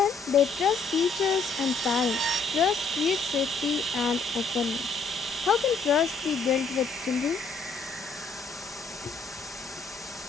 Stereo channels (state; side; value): quieter; right; 4.2 dB